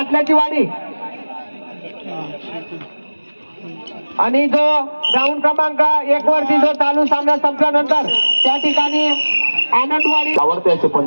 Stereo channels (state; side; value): inverted; both; correlation -1.00